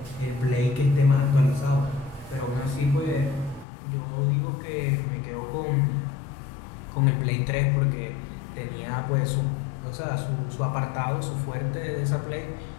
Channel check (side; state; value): right; drops out; at 3.7 s